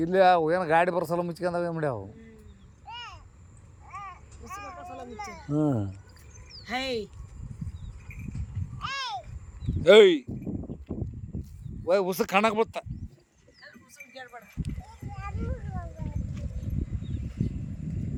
ಇಲ್ಲಿ ಏನು ಗಾಡಿ ಬರೋ ಮುಚ್ಕೊಂಡಾವ ಏನು ಮಾಡ್ಯಾವು ಹ್ಞೂ ಏಯ್ ಉಸ ಕಾಣಕ್ಕೆ ಬತ್ತ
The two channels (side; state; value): both; identical; correlation 1.00